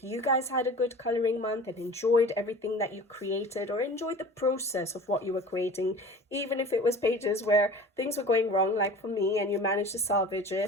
you guys had a good coloring month and enjoyed everything that you created, or enjoyed the process of what you were creating, even if it was pages where things were going wrong, like for me, and you managed to salvage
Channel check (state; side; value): normal; both; correlation 0.40